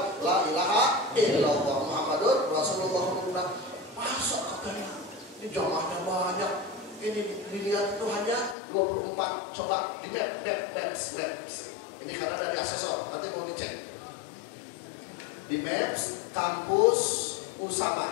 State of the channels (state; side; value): drops out; right; at 8.6 s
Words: la ilaha illallah Muhammadur Rasulullah. Masa katanya ini jamaahnya banyak. Ini dilihat itu hanya 24. Coba di maps. Ini karena dari asesor, nanti mau dicek. Di maps kampus